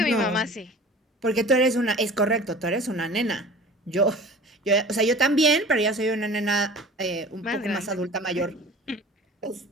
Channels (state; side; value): normal; both; correlation 0.42